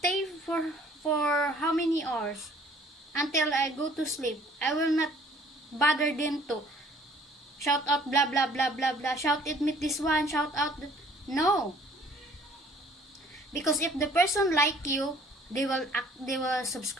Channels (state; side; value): normal; both; correlation 0.56